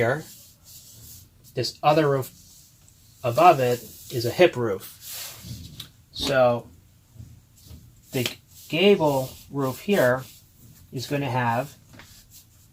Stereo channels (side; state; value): both; identical; correlation 1.00